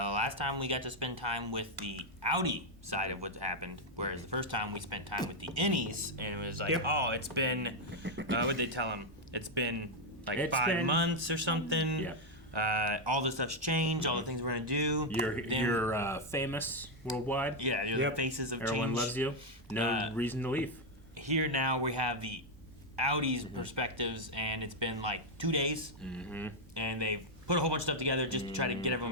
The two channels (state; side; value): normal; both; correlation 0.02